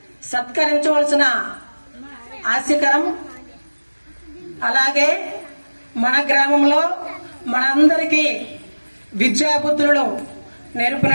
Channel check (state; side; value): inverted; both; correlation -1.00